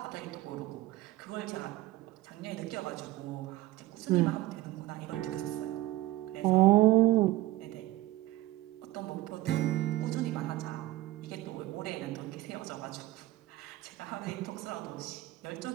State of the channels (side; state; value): left; quieter; 17.2 dB